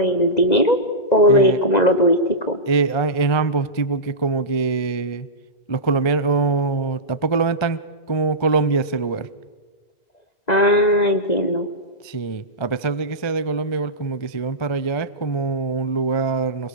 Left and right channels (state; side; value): late; right; 1.4 ms